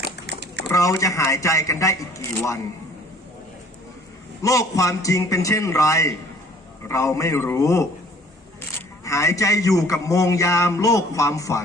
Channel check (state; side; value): normal; both; correlation 0.54